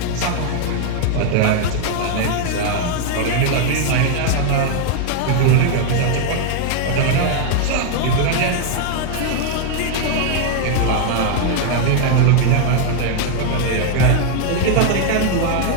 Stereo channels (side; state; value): both; different; correlation 0.00